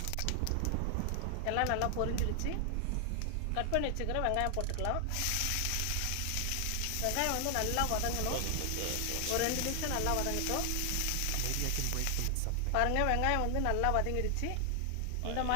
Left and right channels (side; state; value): both; different; correlation 0.00